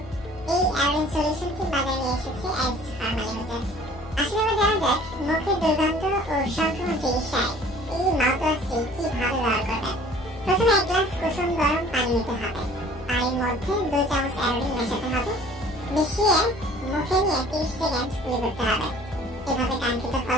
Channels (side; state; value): left; noise; hum, 17 dB below the sound